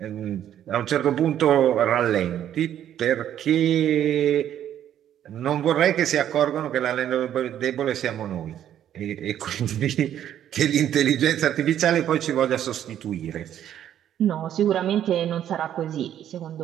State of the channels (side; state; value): left; quieter; 10.6 dB